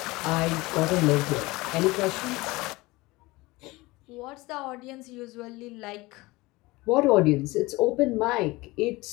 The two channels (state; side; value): quieter; right; 21.6 dB